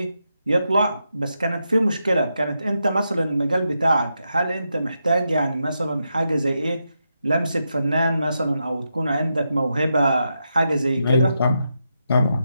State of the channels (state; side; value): inverted; both; correlation -0.85